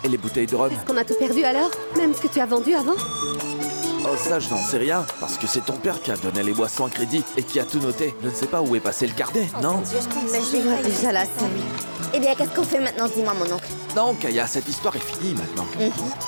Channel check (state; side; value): inverted; both; correlation -1.00